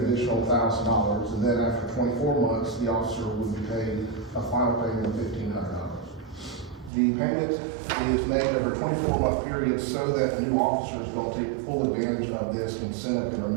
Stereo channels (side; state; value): left; drops out; at 6.9 s